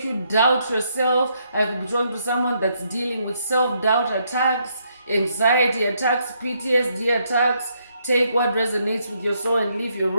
you doubt yourself. I could be talking to someone that's dealing with self-doubt attacks, anxiety attacks, PTSD attacks. Take what resonates with your soul and leave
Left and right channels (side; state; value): both; inverted; correlation -0.74